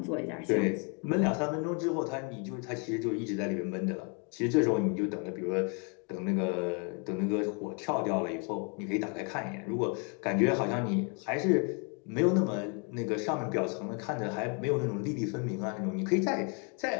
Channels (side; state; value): right; quieter; 36.7 dB